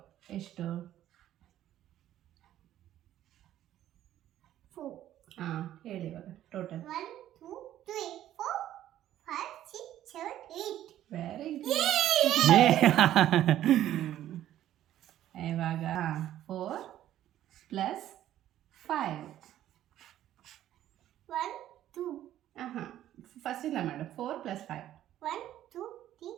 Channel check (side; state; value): left; quieter; 12.5 dB